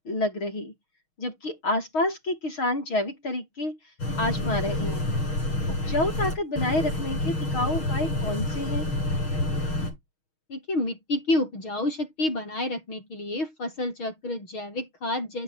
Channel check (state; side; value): late; right; 6.4 ms